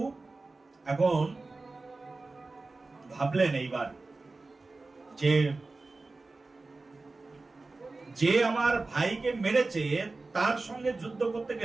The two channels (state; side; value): quieter; left; 3.5 dB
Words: এখন ভাবলেন এইবার যে যে আমার ভাইকে মেরেছে তার সঙ্গে যুদ্ধ করতে